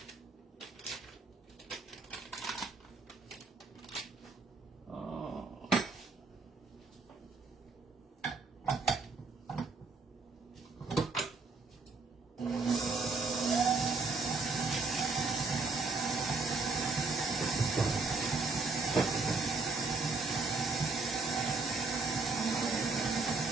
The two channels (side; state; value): left; quieter; 3.9 dB